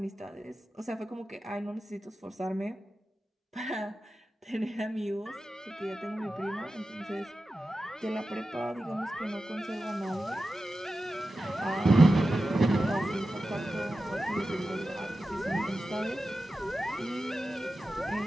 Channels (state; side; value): normal; both; correlation 0.93